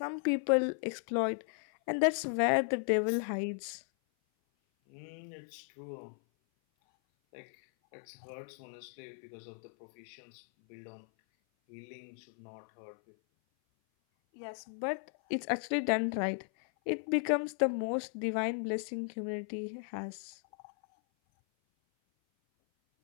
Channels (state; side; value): silent; right; 54 dB below the other